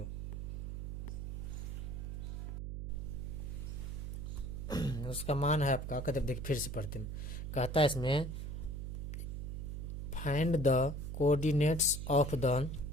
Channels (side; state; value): right; noise; hum, 5 dB below the sound